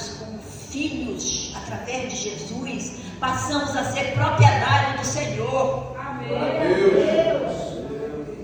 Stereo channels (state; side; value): identical; both; correlation 1.00